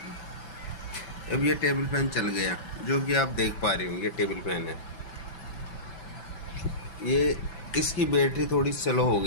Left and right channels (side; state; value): right; late; 6.0 ms